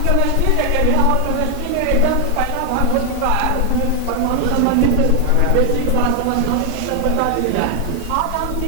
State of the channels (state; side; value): different; both; correlation 0.00